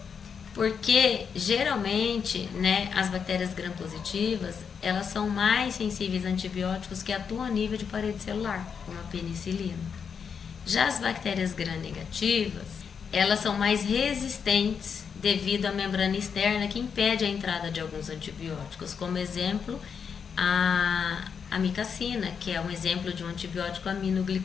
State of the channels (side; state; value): right; quieter; 6.6 dB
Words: Porque geralmente, né, as bactérias gram-positivas, elas são mais sensíveis a antibióticos que atuam a nível de parede celular, como a penicilina. Já as bactérias gram-negativas, elas são mais resistentes devido à membrana externa que impede a entrada de alguns antibióticos, como exemplo a amicacina, que é um exemplo de um antibiótico